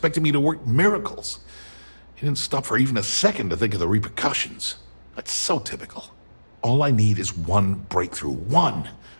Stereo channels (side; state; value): both; inverted; correlation -1.00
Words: me to work miracles. He didn't stop for even a second to think of the repercussions. That's so typical. All I need is one breakthrough, one,